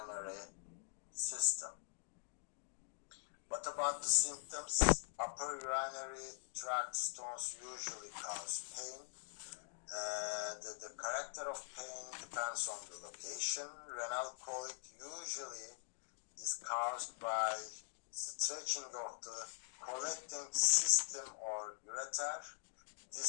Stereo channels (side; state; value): right; silent; digital silence